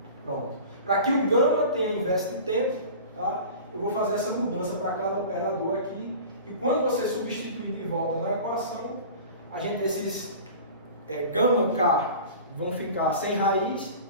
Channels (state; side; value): inverted; both; correlation -0.38